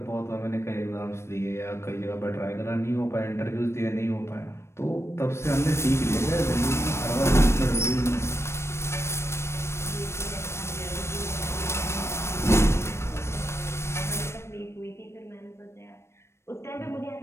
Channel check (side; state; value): right; late; 0.13 ms